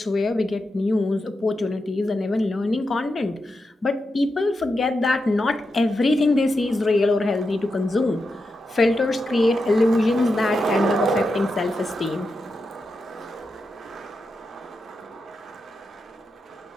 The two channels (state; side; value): normal; both; correlation 0.88